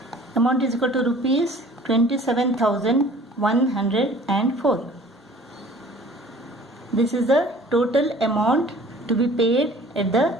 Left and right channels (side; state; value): both; normal; correlation 0.49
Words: Amount is equal to rupees 27,104. This is the total amount to be paid at the